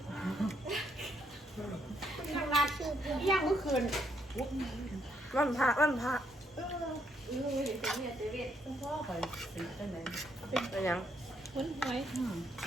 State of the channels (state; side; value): normal; both; correlation 0.74